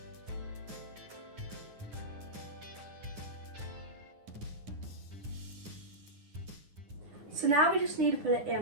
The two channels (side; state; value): left; late; 9.7 ms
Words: So now we just need to put it